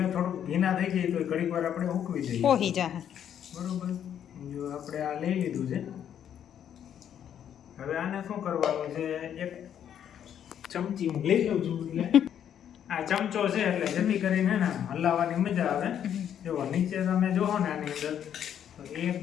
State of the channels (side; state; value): right; quieter; 9.4 dB